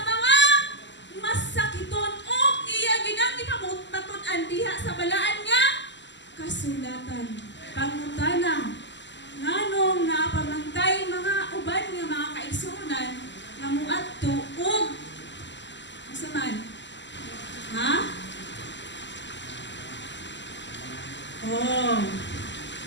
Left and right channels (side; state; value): right; late; 0.53 ms